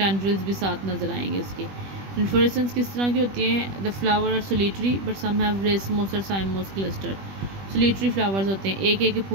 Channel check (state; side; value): late; left; 21 ms